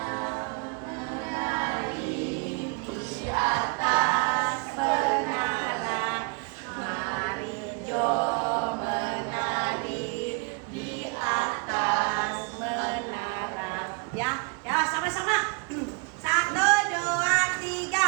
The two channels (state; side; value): quieter; left; 32.3 dB